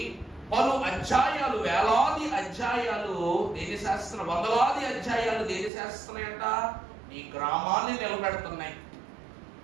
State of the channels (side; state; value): left; drops out; at 5.7 s